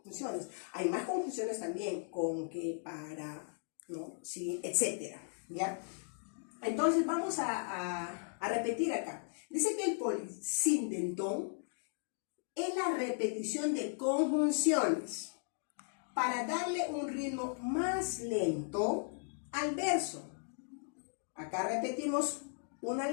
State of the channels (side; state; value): right; silent; digital silence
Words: Hay más conjunciones también, con, que, para, ¿no? Sí, etcétera, ¿ya? Entonces vamos a repetir acá. Dice que el polisindetón es la repetición de conjunciones para darle un ritmo más lento al verso. Acá repetimos una